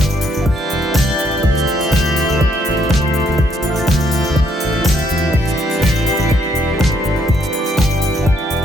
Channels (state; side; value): normal; both; correlation 0.71